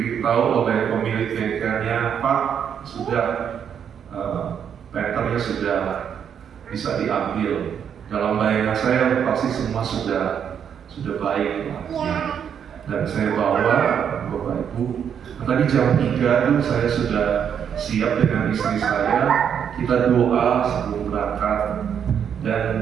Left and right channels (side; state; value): left; quieter; 8.1 dB